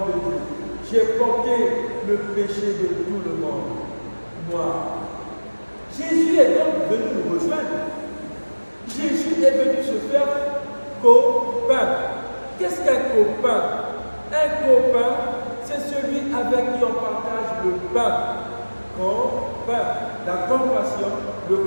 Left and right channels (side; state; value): both; inverted; correlation -1.00